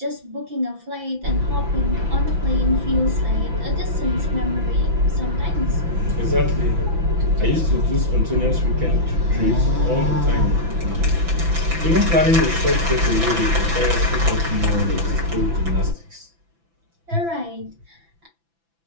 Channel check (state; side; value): late; left; 6.0 ms